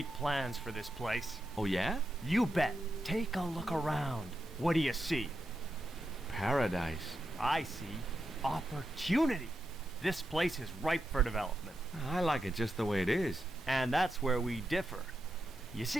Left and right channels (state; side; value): normal; both; correlation 0.86